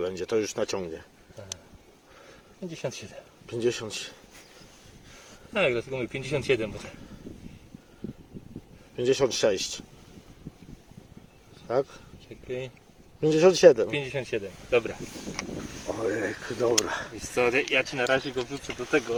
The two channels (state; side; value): identical; both; correlation 1.00